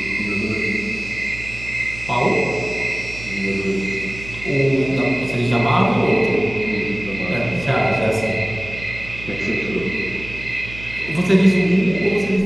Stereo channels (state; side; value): noise; right; hum, 14 dB below the sound